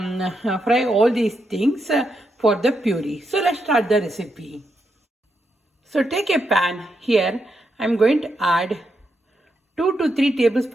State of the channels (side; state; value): both; normal; correlation 0.82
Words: all these things for the puree. So let's start the recipe. So take a pan. Here I'm going to add 2 to 3